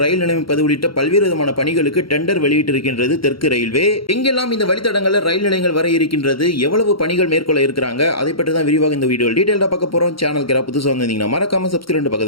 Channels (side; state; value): right; late; 0.74 ms